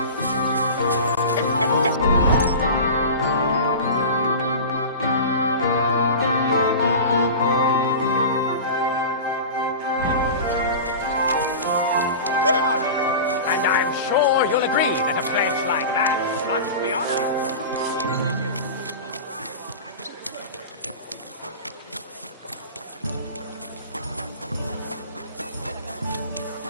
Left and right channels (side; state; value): both; inverted; correlation -0.32